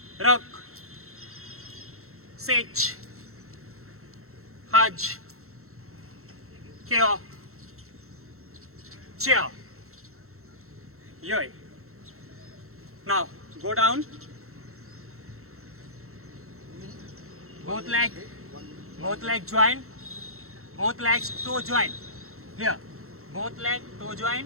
Rook. Sich. Hajj. Q. Cheer. Yoi. Now go down. Both leg join. Both legs toe join. Here. Both leg toe join.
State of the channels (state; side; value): late; left; 0.63 ms